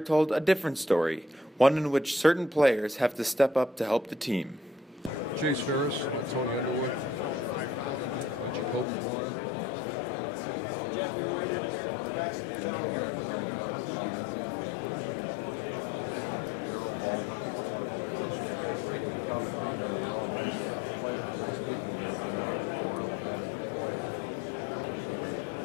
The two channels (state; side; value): drops out; right; at 8.8 s